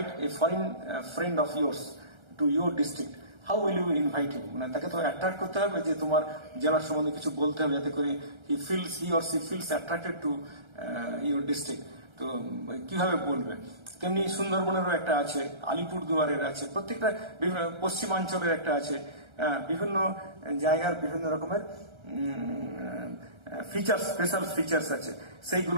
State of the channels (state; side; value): late; left; 1.3 ms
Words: a foreign friend of yours to your district, how will you invite him? মানে তাকে তো অ্যাট্রাক্ট করতে হবে যে তোমার জেলার সম্বন্ধে কিছু বলতে হবে, যাতে করে he or she feels attracted to your district. তো কিভাবে বলবে? তেমনি সুন্দরবনেরও একটা আছে, আলিপুরদুয়ারের আছে, প্রত্যেকটা পশ্চিমাঞ্চলের একটা আছে, বিভিন্ন জায়গার বিভিন্ন রকমের ফিচার্স, স্পেশাল ফিচার্স আছে,